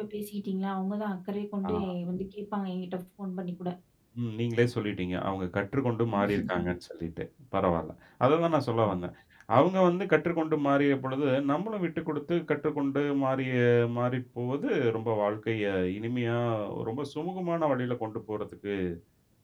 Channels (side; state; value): both; identical; correlation 1.00